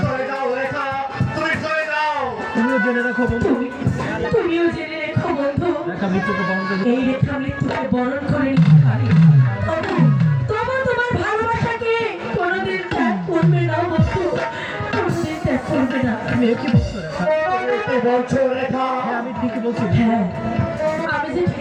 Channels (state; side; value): identical; both; correlation 1.00